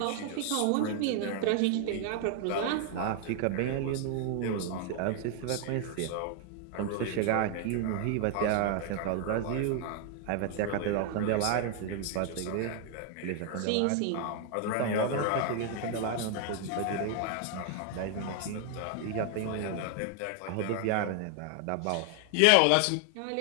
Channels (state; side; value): different; both; correlation 0.00